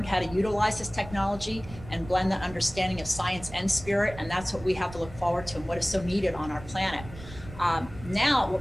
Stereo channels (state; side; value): noise; right; rumble, 15 dB below the sound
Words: how to utilize this technology and blend that understanding of science and spirit. And that's what we have to look forward to and what is so needed on our planet. Now, what